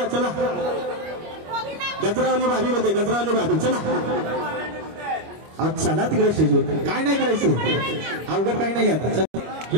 चला गजरावाली भाभी म्हणते. गजरावाली भाभी. चला चला तिकडे स्टेजवर. काय नाही करायचं. अवघड काही नाही. आता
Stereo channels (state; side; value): late; left; 25 ms